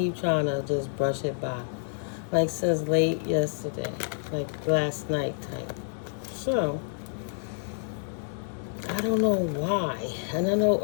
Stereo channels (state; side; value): silent; right; 56 dB below the other